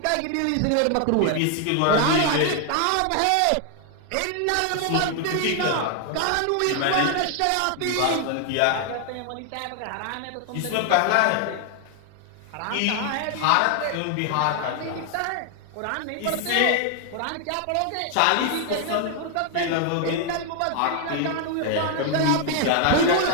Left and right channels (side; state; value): both; different; correlation 0.00